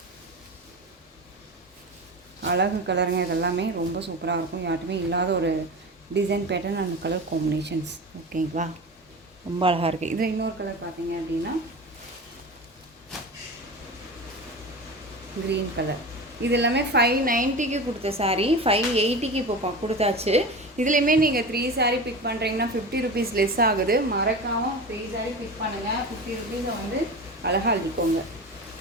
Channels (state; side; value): normal; both; correlation 0.29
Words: அழகு கலருங்க. இதெல்லாமே ரொம்ப சூப்பராக இருக்கும். யார்ட்டுமே இல்லாத ஒரு design pattern and colour combinations. ஓகேங்களா? ரொம்ப அழகாக இருக்குது. இதில் இன்னொரு கலர் பார்த்தீங்க அப்படின்னா க்ரீன் கலர். இது எல்லாமே 590க்கு கொடுத்த சாரீ 580க்கு இப்போ கொடுத்தாச்சு. இதுலேயுமே நீங்கள் 3 சாரீ பிக் பண்ணுறீங்கன்னா 50 ருபீஸ் லெஸ் ஆகுது. மறக்காமல் 3 சாரீ பிக் பண்ணுங்கள். 50 ருபீஸை வந்து அழகாக அழுதிக்கோங்க.